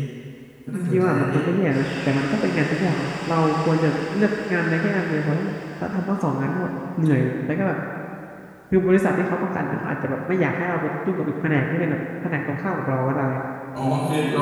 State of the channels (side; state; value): both; identical; correlation 1.00